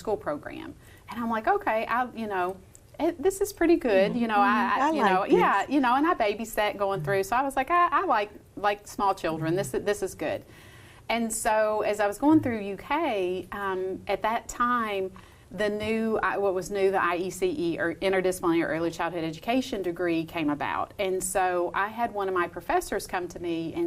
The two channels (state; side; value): identical; both; correlation 1.00